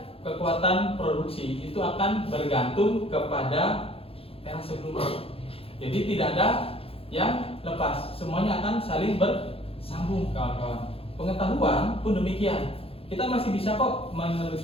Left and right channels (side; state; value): right; late; 0.27 ms